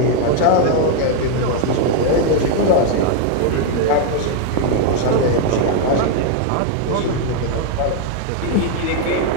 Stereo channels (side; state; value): both; different; correlation 0.00